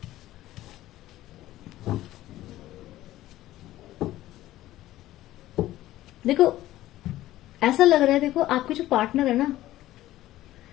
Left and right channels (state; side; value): quieter; right; 15.1 dB